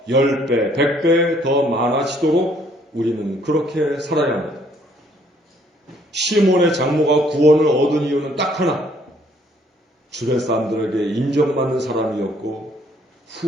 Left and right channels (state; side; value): normal; both; correlation 0.64